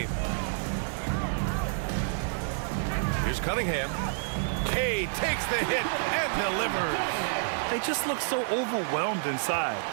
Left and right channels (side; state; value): left; silent; 59 dB below the other